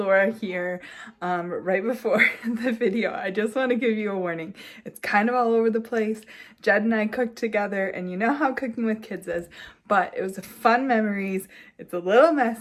here. Right before the video, I just want to give you a warning. It's kind of all over the place. Jed and I cooked together, and you know how cooking with kids is, but it was fun memories. It's a little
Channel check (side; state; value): both; identical; correlation 1.00